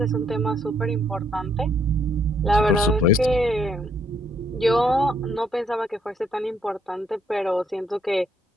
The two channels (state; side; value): normal; both; correlation 0.70